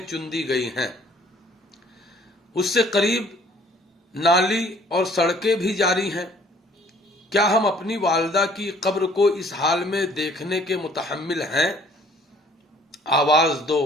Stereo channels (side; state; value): both; normal; correlation 0.57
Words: چندی گئی ہیں۔ اس سے قریب نالی اور سڑکیں بھی جاری ہیں۔ کیا ہم اپنی والدہ کی قبر کو اس حال میں دیکھنے کے متحمل ہیں؟ آواز دو